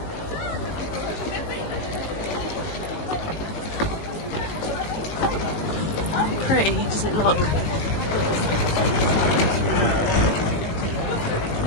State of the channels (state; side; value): late; right; 19 ms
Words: Pretty, does it look?